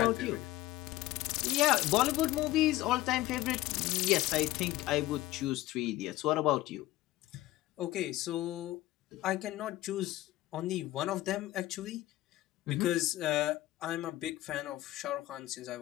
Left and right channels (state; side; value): quieter; right; 16.6 dB